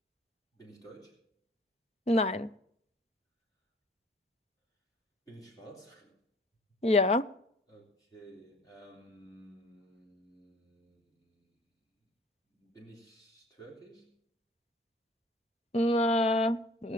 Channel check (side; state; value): both; normal; correlation 0.51